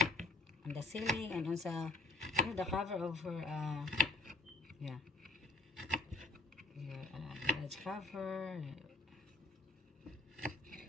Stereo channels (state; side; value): quieter; right; 3.4 dB